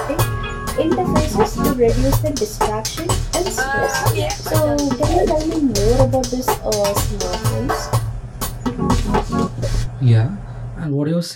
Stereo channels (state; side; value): identical; both; correlation 1.00